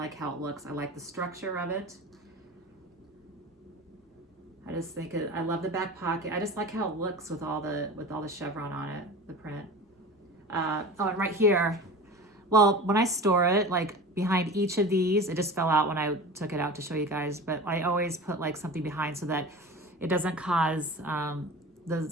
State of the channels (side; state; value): both; normal; correlation 0.34